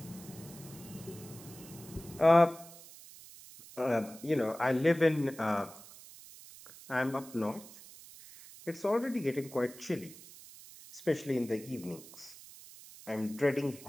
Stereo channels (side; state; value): right; noise; hiss, 18 dB below the sound